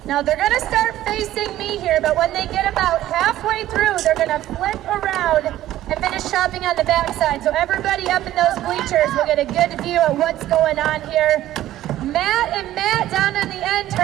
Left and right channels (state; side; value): quieter; left; 13.8 dB